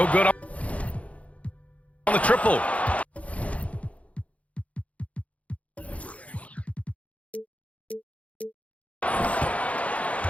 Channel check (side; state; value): right; late; 0.066 ms